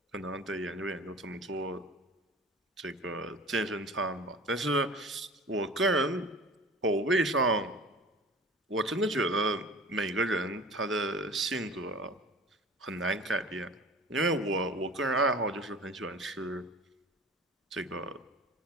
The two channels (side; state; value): both; normal; correlation 0.40